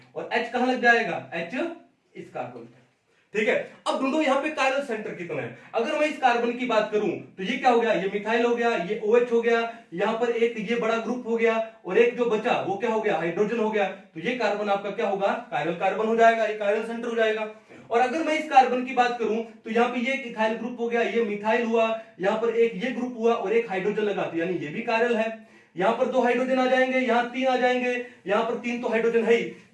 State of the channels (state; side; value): identical; both; correlation 1.00